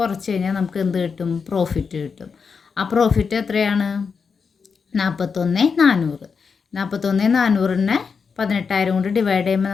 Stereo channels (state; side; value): quieter; right; 5.6 dB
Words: കഴിഞ്ഞാൽ നമുക്ക് എന്ത് കിട്ടും? പ്രോഫിറ്റ് കിട്ടും. ആ പ്രോഫിറ്റ് എത്രയാണ്? 41,400. 41,400നെ 18,000 കൊണ്ട് ഡിവൈഡ് ചെയ്യുമ്പോൾ